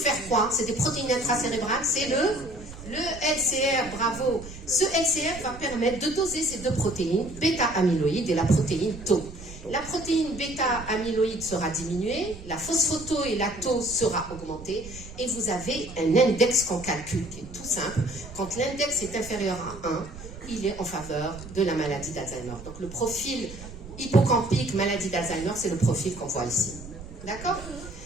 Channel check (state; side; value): noise; right; rumble, 14 dB below the sound